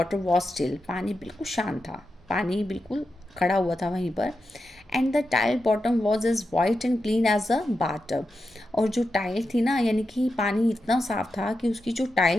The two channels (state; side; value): normal; both; correlation 0.88